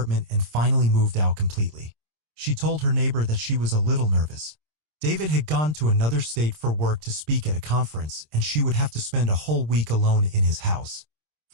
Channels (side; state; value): left; late; 26 ms